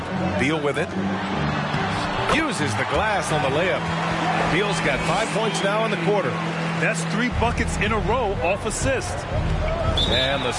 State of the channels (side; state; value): both; identical; correlation 1.00